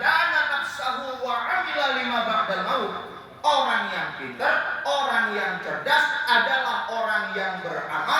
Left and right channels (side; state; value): both; identical; correlation 1.00